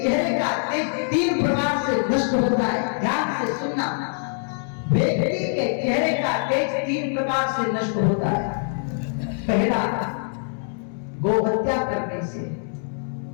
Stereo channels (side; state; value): right; silent; 63 dB below the other